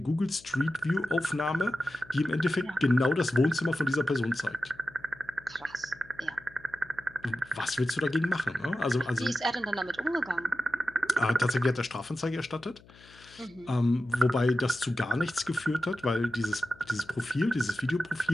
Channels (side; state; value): left; noise; hum, 24 dB below the sound